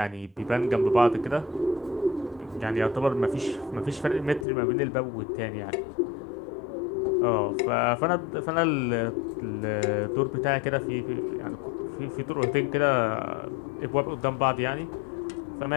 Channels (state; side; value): drops out; right; at 4.5 s